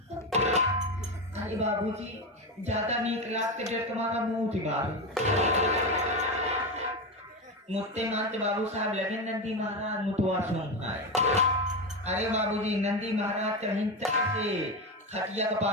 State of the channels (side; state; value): both; normal; correlation 0.16